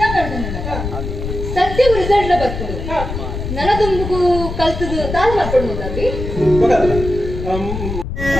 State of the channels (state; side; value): noise; left; rumble, 6 dB below the sound